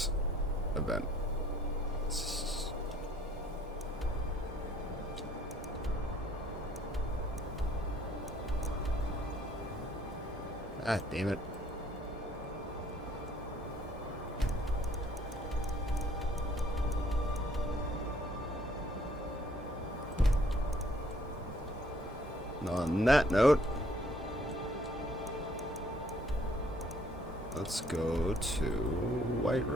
event. Ah, damn it. On that note, let's go to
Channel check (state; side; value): normal; both; correlation 0.62